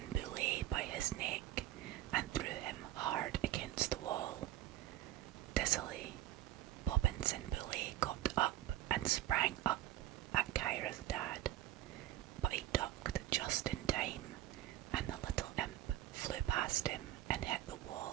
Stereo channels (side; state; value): left; quieter; 13.9 dB